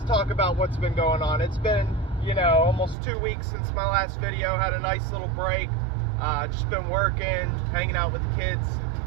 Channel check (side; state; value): left; drops out; at 3.0 s